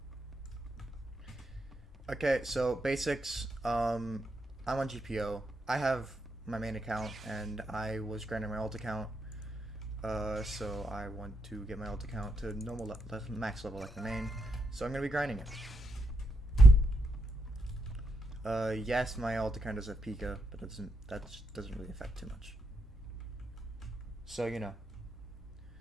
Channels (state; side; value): normal; both; correlation 0.80